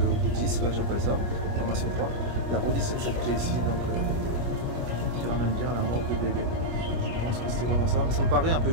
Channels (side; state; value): left; late; 25 ms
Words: Poutis, j'appelle ça, formation 3. Il a redessiné cette clé ici, donc qui ramène bien la morgue de bébé. Je pense que c'était vraiment ça, mais ça me paraît un peu